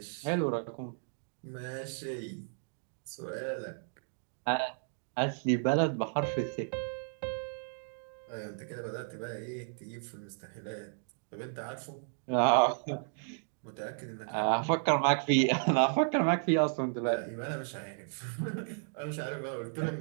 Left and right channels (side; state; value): left; silent; digital silence